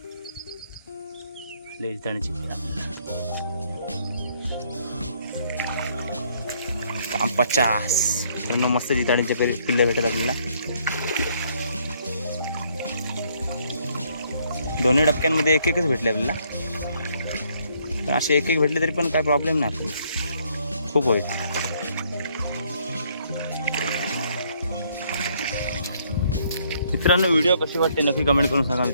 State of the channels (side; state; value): both; inverted; correlation -0.67